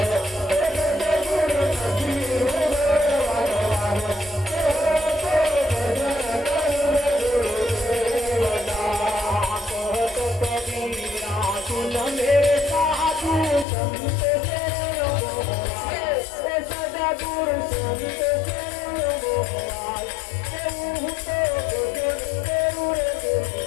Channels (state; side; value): drops out; right; at 13.7 s